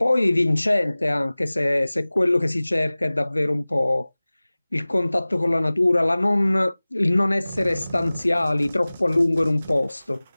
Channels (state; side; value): inverted; both; correlation -0.99